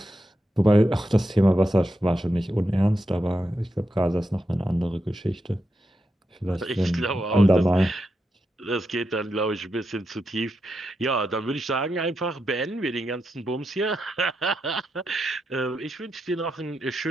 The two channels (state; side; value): normal; both; correlation 0.86